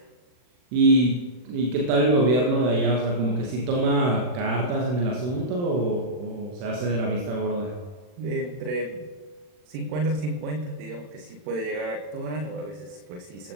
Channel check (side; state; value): left; late; 40 ms